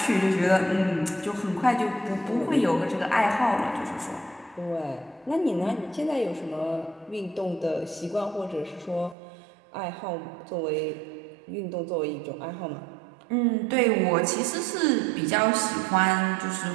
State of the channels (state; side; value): drops out; left; at 9.2 s